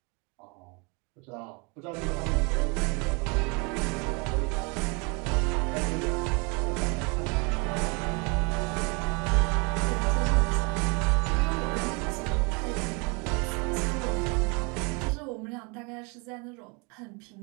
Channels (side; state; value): left; quieter; 31.2 dB